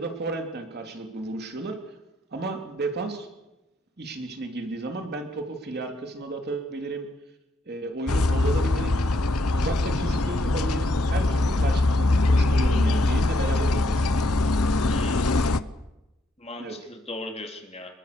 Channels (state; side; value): normal; both; correlation 0.74